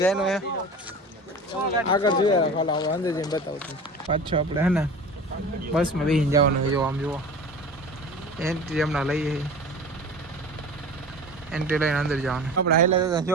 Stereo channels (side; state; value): both; normal; correlation 0.36